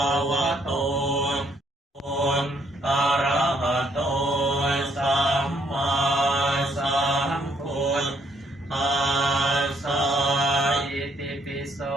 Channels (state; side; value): normal; both; correlation 0.70